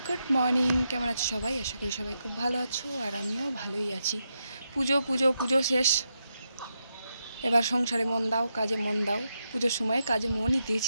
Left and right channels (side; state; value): both; inverted; correlation -0.85